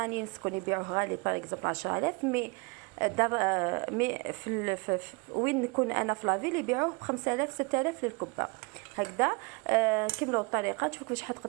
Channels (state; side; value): quieter; left; 28.2 dB